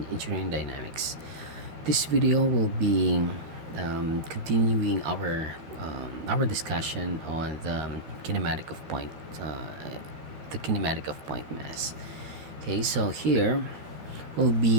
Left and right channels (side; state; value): left; late; 13 ms